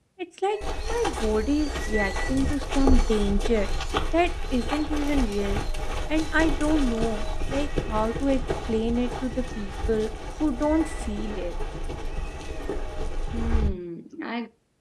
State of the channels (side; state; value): both; identical; correlation 1.00